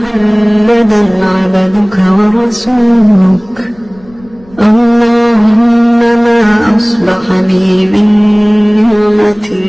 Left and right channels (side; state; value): left; noise; rumble, 26 dB below the sound